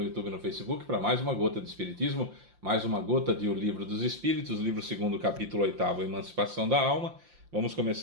YouTube e no Facebook para mais uma gota de Espiritismo, mais uma gota de O Livro dos Espíritos, livro 2º, capítulo 8º, Emancipação da Alma. Vamos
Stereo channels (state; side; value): late; left; 5.8 ms